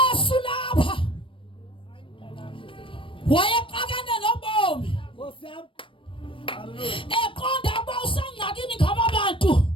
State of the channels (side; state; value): right; late; 0.25 ms